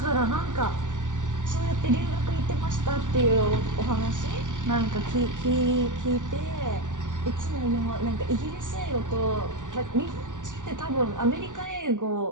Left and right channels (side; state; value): left; late; 0.87 ms